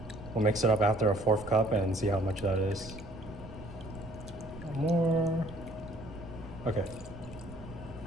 We'll mix it up after a 1/4 cup and see how much that is. More. Okay.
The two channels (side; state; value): right; noise; rumble, 15 dB below the sound